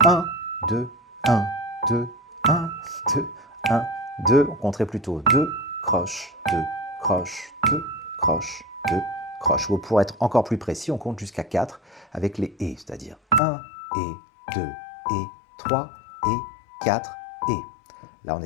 1, 2, 1, 2, 1, 2, 1, 2. On compterait plutôt 2, croche, 2, croche, 2, croche, 2, croche. Ou pour être encore plus précis, on compte jusqu'à 4 avec les et, c'est-à-dire 1 et 2 et 3 et 4 et. Là, on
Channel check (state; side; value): drops out; right; at 13.4 s